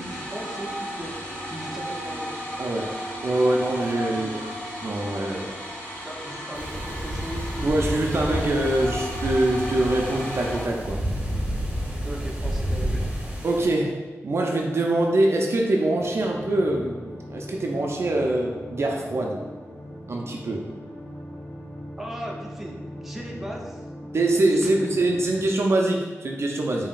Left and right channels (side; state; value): both; normal; correlation 0.88